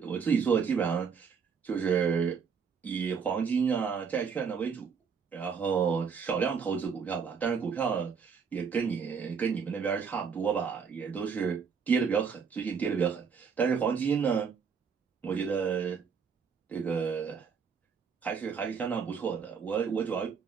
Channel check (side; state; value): left; quieter; 6.2 dB